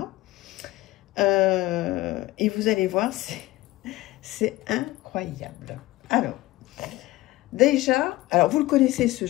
Et vous allez voir, c'est incroyable. Alors, déjà, vous le connaissez ce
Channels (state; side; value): quieter; right; 18.3 dB